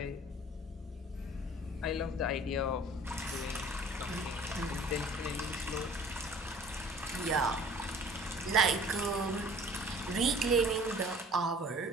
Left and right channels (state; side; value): normal; both; correlation 0.49